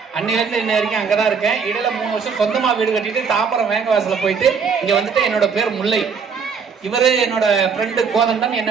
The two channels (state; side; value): quieter; left; 5.9 dB